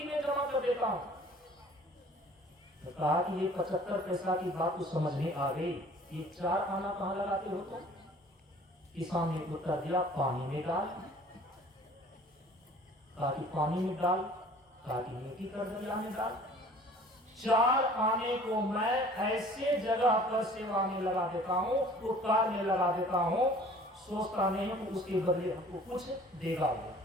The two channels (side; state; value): both; normal; correlation 0.50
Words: में जमा कर देता हूँ। तो कहा कि ये 75 पैसा की बात तो समझ में आ गई, ये 4 आना कहाँ लगाते हो तुम? किसान ने उत्तर दिया, पानी में डाल। कहा कि पानी में डाल? कहा कि नेकी कर दरिया में डाल। 4 आने को मैं ऐसे जगह पर सेवा में लगा देता हूँ, उपकार में लगा देता हूँ, सोचता नहीं हूँ उसके बदले हमको कुछ देगा वो,